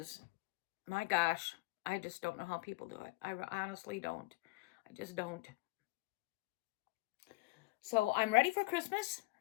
my gosh, I just don't know how people do it. I honestly don't. I just don't. So I'm ready for Christmas.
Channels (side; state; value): right; quieter; 23.5 dB